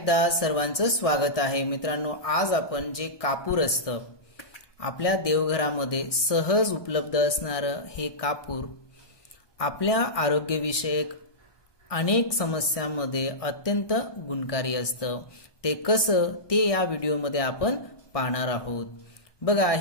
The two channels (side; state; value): right; late; 1.6 ms